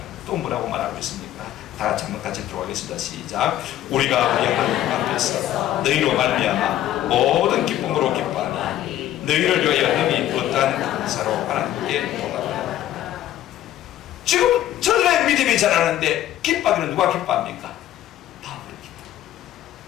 또 뭐라고 말하고 있습니까? 다 같이 한번 같이 들어가겠습니다. 시작. 우리가 우리 하나님 앞에서 너희로 말미암아 모든 기쁨으로 기뻐하니 너희를 위하여 능히 어떠한 감사로 하나님께 돌아가라. 지금 저들의 믿음이 자라는데 기뻐하기는 누가 기뻐합니까? 바울이 기뻐.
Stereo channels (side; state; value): right; quieter; 12.7 dB